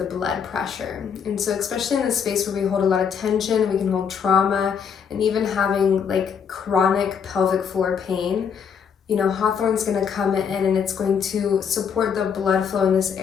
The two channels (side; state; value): right; quieter; 7.0 dB